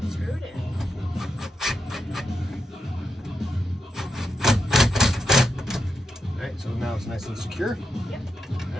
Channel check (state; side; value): normal; both; correlation 0.86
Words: Screw it in. alright, so now it's nice and secure. Yep.